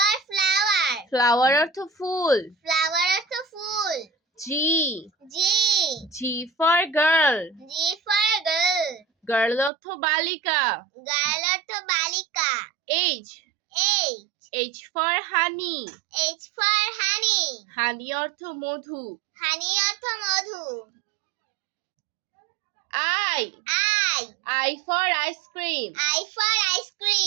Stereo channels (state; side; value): drops out; left; at 9.7 s